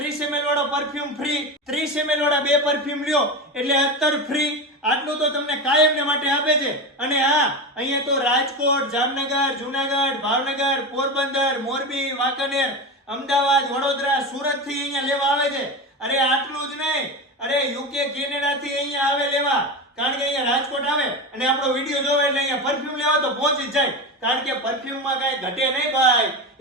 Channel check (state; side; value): normal; both; correlation 0.21